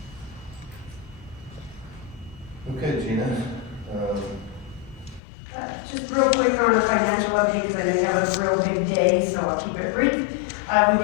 Okay, Gina. Just real quick on the financial update, because I know you have a real big day, so I'll keep it brief. We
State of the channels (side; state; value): right; drops out; at 5.2 s